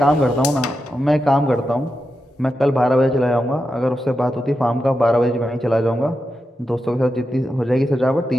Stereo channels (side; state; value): both; normal; correlation 0.88